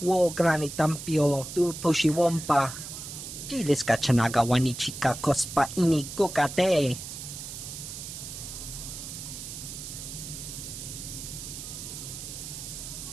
granitampio, tu pushiwompa. Gilis ka chanagawa ni chika kospa ini kukate.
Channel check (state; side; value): noise; right; hiss, 9 dB below the sound